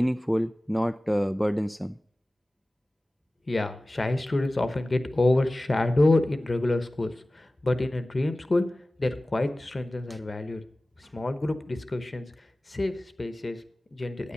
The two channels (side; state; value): both; normal; correlation 0.97